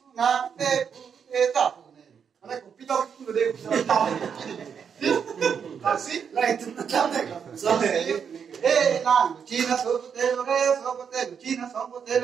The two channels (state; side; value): quieter; left; 7.1 dB